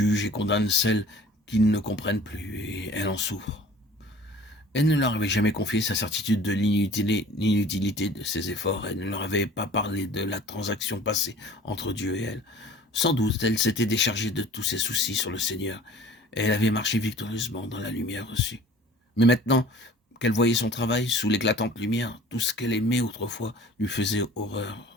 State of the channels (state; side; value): normal; both; correlation 0.46